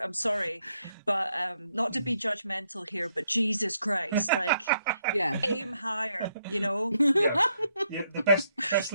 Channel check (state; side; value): inverted; both; correlation -0.76